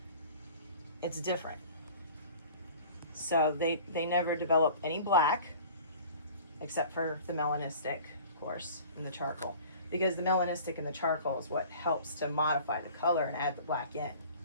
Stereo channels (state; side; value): inverted; both; correlation -0.45